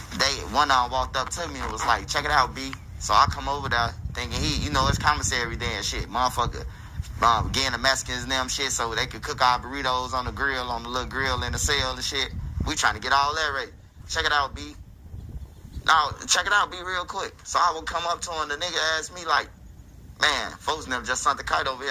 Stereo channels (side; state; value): both; identical; correlation 1.00